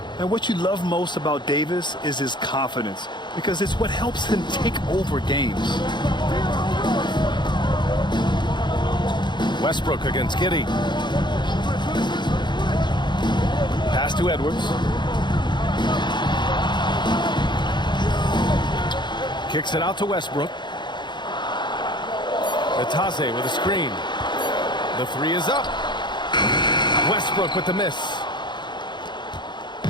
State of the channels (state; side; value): late; right; 0.22 ms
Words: And what you love most about Davis is his confidence, because it's what helps him take over games. Westbrook against Giddey. Pass to Edwards. Kicks it out to Westbrook. Batase with a screen. The 3 is up. Westbrook with the miss.